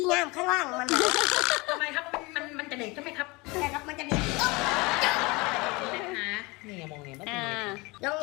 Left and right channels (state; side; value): quieter; right; 25.1 dB